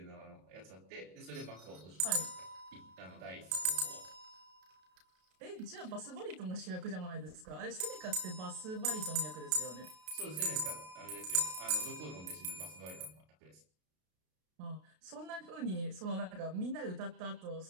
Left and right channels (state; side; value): late; left; 33 ms